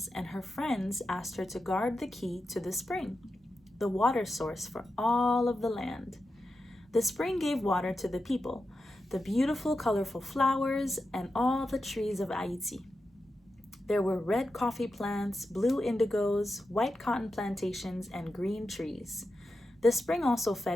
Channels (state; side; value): normal; both; correlation 0.90